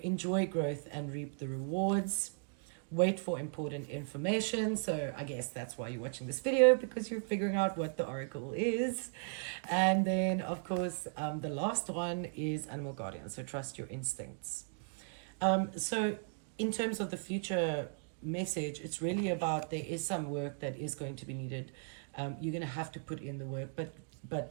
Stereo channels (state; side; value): silent; left; digital silence